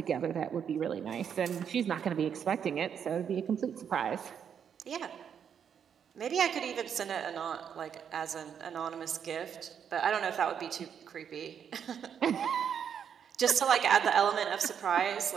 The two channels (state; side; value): quieter; left; 7.9 dB